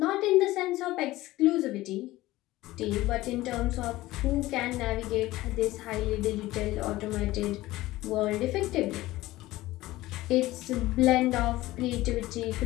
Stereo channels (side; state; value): right; quieter; 17.4 dB